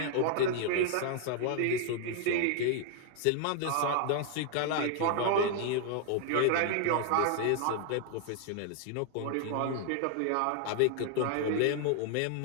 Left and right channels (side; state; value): both; different; correlation 0.00